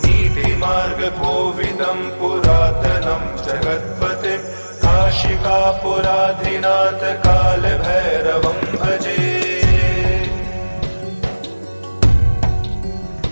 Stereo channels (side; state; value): both; inverted; correlation -1.00